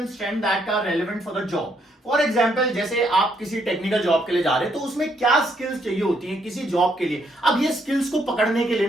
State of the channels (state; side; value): normal; both; correlation 0.72